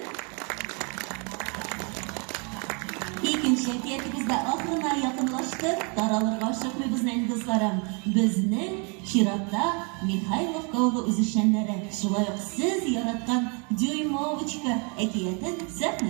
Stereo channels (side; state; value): left; quieter; 34.8 dB